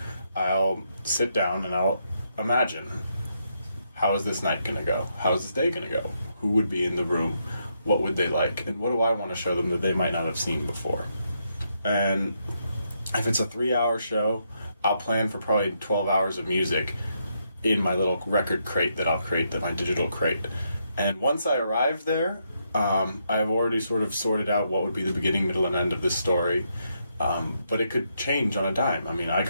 I'll sit down and I'll imagine, how is this night going to go? How is this day going to go? Who would be in the room? What would they like? And what do I want to show them that they might not have seen before? And if it's a 3-hour show, I'll plan for probably 12 hours of music in my little record crate that I'll create, my digital crate. And once I arrive there, I've already sort of sorted out what would be the beginning, middle, and end of this story. But it could change on a dime. I mean, I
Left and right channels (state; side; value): inverted; both; correlation -0.78